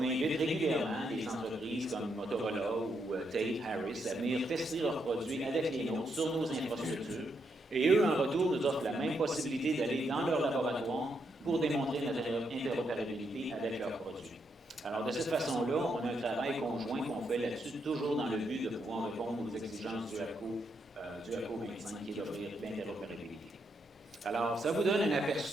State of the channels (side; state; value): both; normal; correlation 0.79